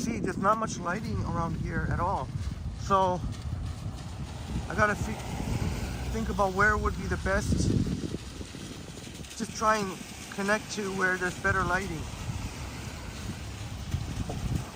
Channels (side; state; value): both; identical; correlation 1.00